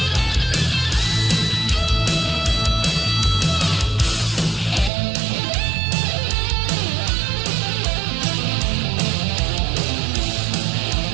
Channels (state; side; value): drops out; left; at 4.9 s